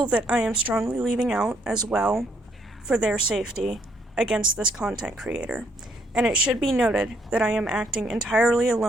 that I am strongly leaving out as well for their safety against this content creator. And it should be noted that I am acting entirely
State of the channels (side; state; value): both; normal; correlation 0.70